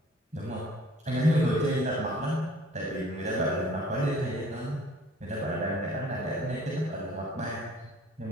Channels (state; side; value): normal; both; correlation 0.53